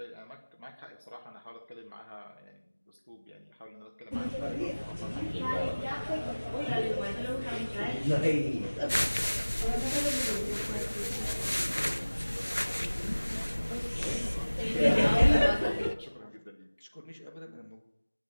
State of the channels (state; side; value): inverted; both; correlation -1.00